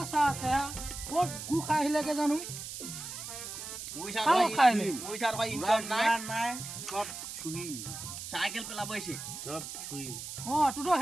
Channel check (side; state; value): right; noise; hiss, 8 dB below the sound